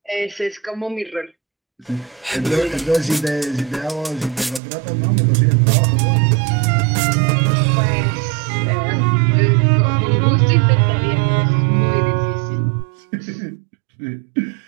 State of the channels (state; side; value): drops out; left; at 4.6 s